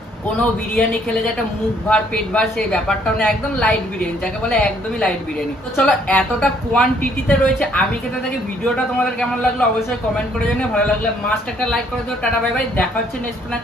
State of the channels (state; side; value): normal; both; correlation 0.65